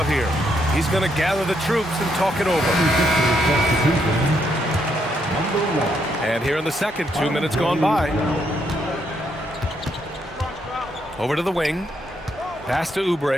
here. He's going to gather the troops and talk it over. And here in the second, 2 minutes gone by. Over to the wing. Pass to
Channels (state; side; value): normal; both; correlation 0.76